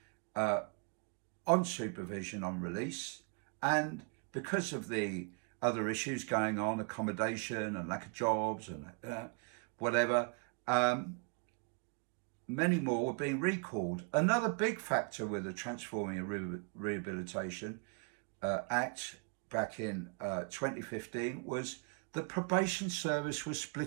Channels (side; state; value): left; quieter; 37.8 dB